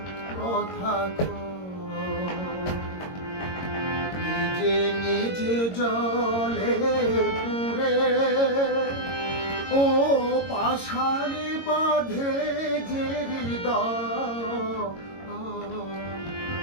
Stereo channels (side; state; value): right; late; 22 ms